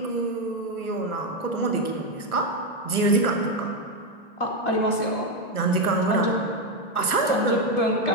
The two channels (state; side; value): late; right; 1.2 ms